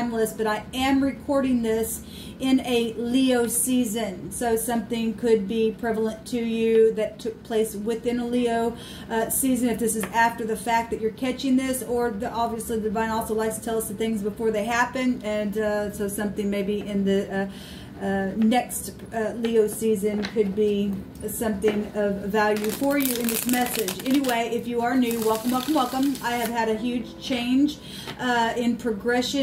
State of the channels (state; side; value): identical; both; correlation 1.00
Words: but I am recording this in a Leo season. So something could be prevalent to you that took place within a Leo season. If this is after the fact that you're catching this, or obviously the divine also likes to tell us the things before they happen. And so something maybe in the next Leo season could be something of value for you in this message. Anyway, if you are new, welcome, welcome, welcome. I have had a huge change in